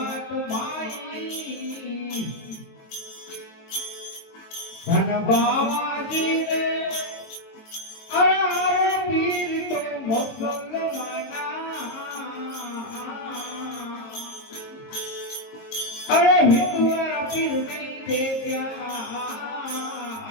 माई धन बाबाजी रे अरे पीर तो मुसलमाना अरे हिंदुआरा पीर नहीं देखा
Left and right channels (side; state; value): right; late; 22 ms